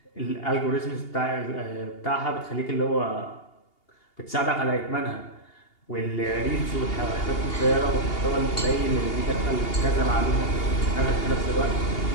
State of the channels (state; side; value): late; right; 2.8 ms